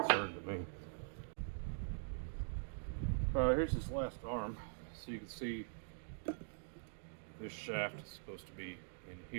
concern to me. Here's this last arm, so you can see this shaft is supposed to be in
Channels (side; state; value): left; silent; digital silence